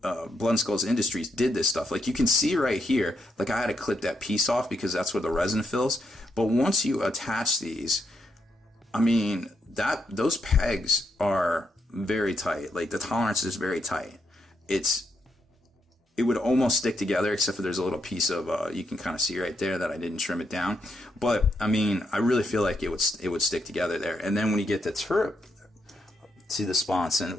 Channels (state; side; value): normal; both; correlation 0.79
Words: Blood and Skulls Industries did this stuff. Like, you can see right here, like I had to clip that piece off because that's where the resin fills. But once you attach these, I mean, those pegs are very tight. Like, the tolerance is very tight. It would almost stick together, except for there's a little piece of you can kind of see right there that I didn't trim it down. But I mean, I really feel like it would stick together there. And then when you get the turret to the sponson,